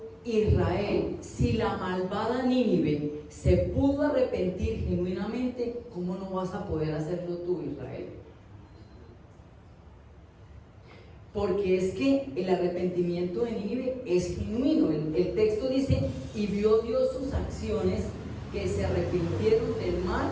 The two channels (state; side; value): identical; both; correlation 1.00